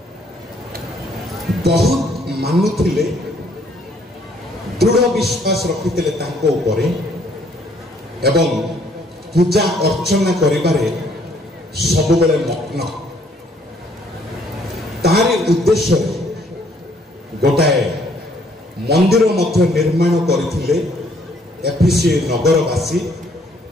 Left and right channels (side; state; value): both; normal; correlation 0.64